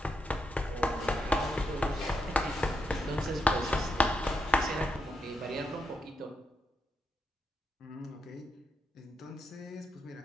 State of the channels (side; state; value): both; normal; correlation 0.82